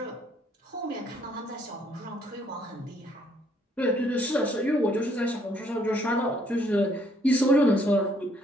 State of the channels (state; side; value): normal; both; correlation 0.66